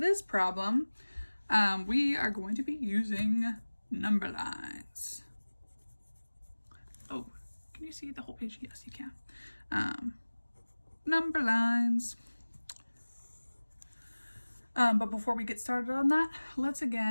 problem, we are going to be using number lines. Oh, can you see the whole page? Yes, you can. Number lines. But before we get started on that, let's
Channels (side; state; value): both; inverted; correlation -1.00